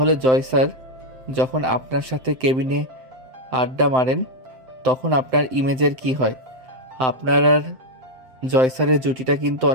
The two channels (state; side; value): late; left; 7.8 ms